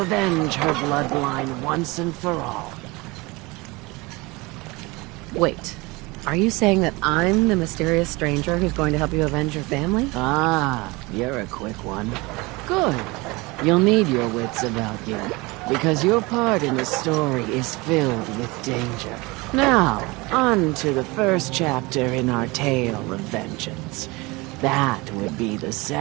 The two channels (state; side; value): quieter; left; 24.1 dB